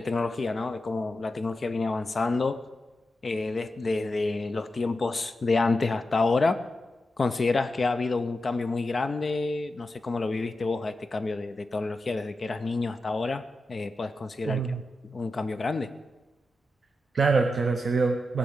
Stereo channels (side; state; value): both; normal; correlation 0.89